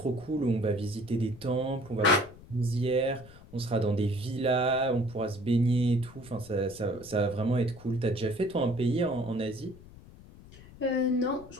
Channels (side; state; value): left; noise; rumble, 20 dB below the sound